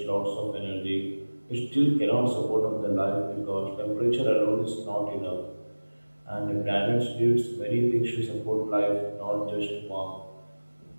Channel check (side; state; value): both; inverted; correlation -1.00